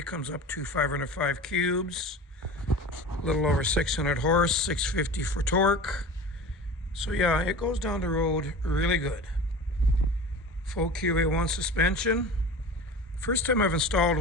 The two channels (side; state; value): both; normal; correlation 0.35